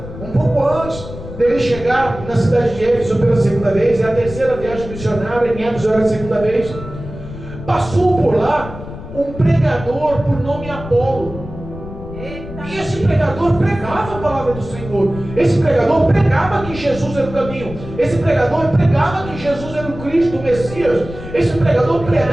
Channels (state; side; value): noise; left; rumble, 12 dB below the sound